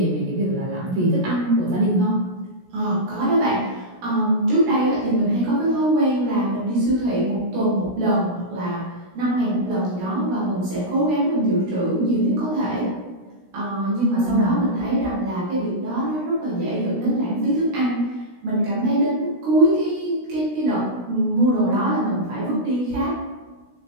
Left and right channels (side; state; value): left; late; 16 ms